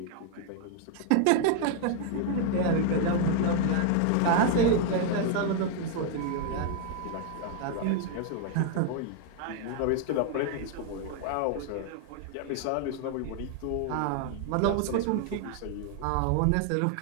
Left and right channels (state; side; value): different; both; correlation 0.00